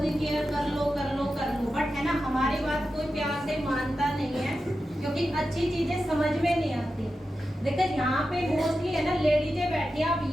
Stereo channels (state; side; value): normal; both; correlation 0.91